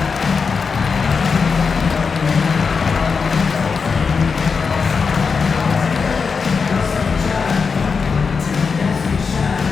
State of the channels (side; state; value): right; quieter; 5.3 dB